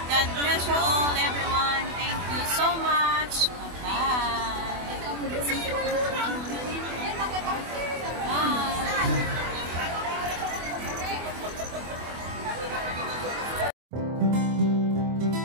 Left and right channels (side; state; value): left; late; 24 ms